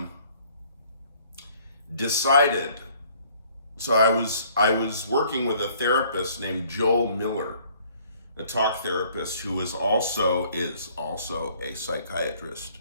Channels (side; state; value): both; inverted; correlation -0.59